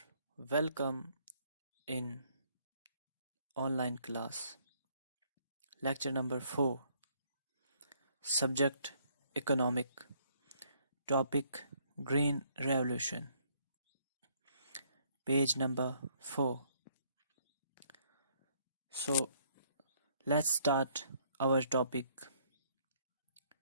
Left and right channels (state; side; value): inverted; both; correlation -0.66